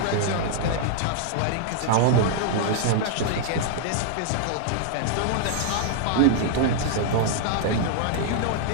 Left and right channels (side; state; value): both; different; correlation 0.00